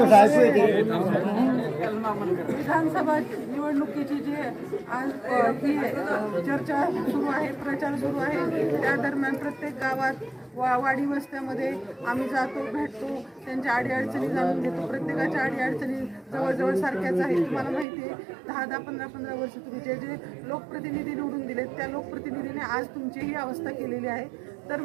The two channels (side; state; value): left; drops out; at 17.9 s